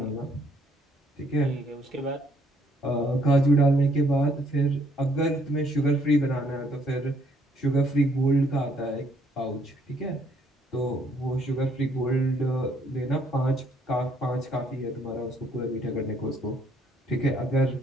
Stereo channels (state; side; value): normal; both; correlation 0.67